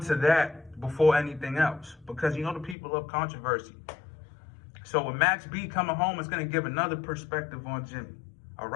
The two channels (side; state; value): right; drops out; at 2.8 s